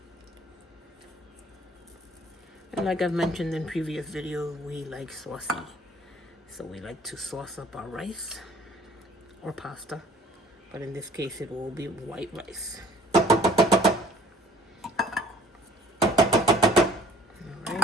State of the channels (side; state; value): both; normal; correlation 0.53